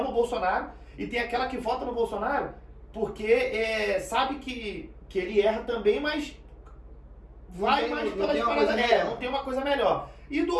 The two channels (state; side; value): identical; both; correlation 1.00